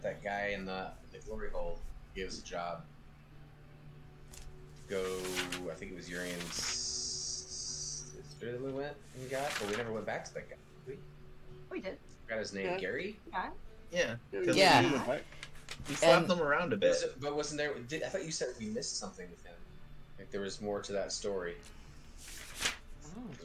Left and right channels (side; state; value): both; identical; correlation 1.00